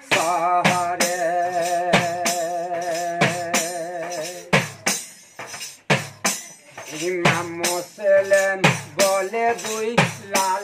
শহরে। ইমাম মুসলিম বলে দুই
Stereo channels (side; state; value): both; identical; correlation 1.00